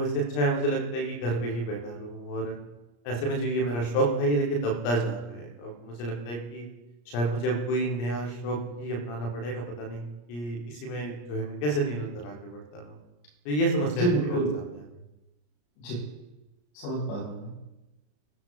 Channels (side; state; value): right; late; 34 ms